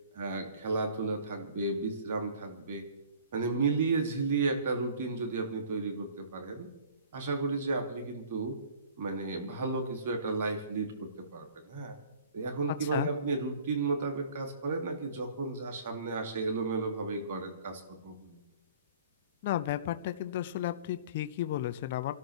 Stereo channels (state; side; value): inverted; both; correlation -0.48